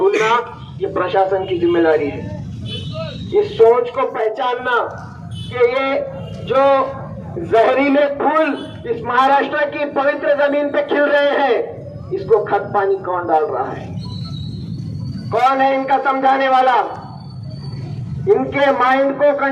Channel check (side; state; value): both; identical; correlation 1.00